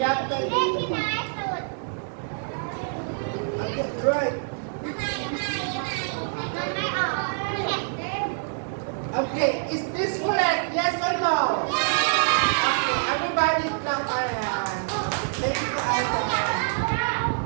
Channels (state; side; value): silent; left; digital silence